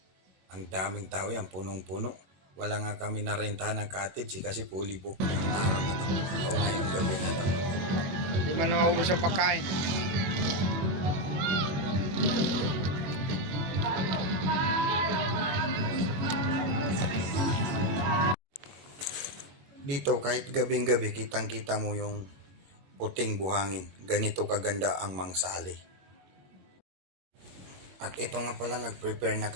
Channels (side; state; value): left; late; 21 ms